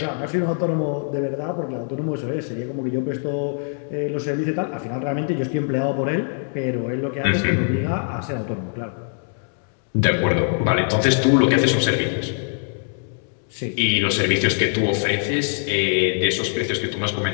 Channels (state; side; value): silent; right; digital silence